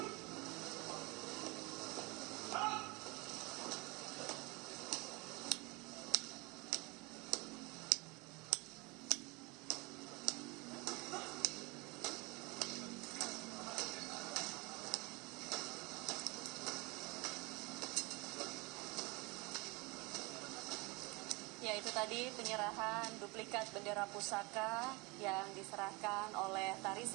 Jalan. Ya, itu tadi penyerahan duplikat bendera pusaka yang diserahkan oleh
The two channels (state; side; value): quieter; left; 26.5 dB